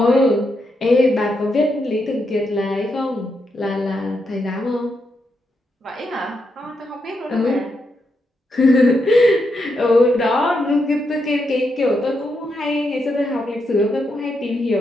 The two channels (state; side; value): normal; both; correlation 0.82